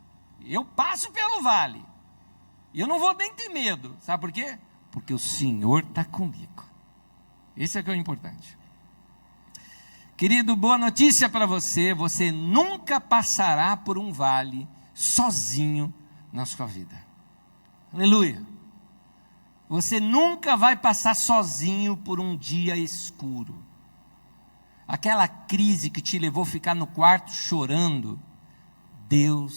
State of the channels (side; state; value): both; inverted; correlation -1.00